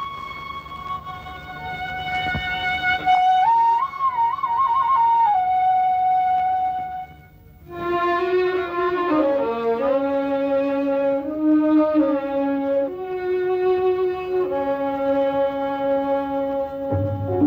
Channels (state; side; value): identical; both; correlation 1.00